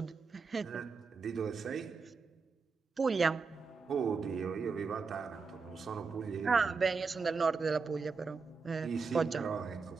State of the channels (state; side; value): quieter; left; 4.9 dB